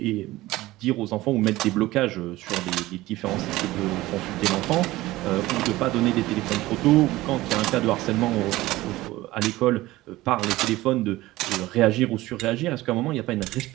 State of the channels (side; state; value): left; quieter; 17.8 dB